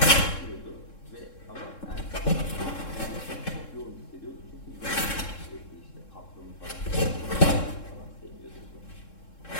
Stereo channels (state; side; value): late; right; 3.7 ms